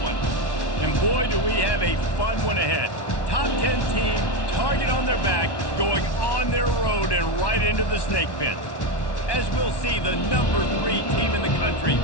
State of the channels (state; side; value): late; right; 1.1 ms